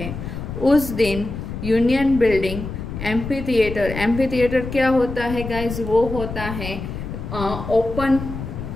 उस दिन यूनियन बिल्डिंग एम्फीथिएटर क्या होता है गाइज? वो होता है ओपन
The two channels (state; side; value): noise; left; rumble, 7 dB below the sound